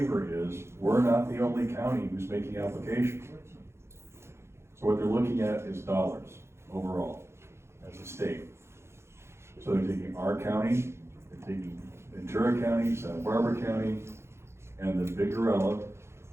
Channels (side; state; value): left; late; 0.13 ms